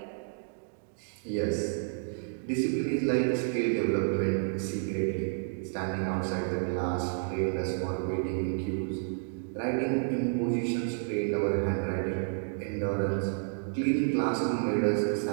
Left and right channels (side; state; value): left; silent; digital silence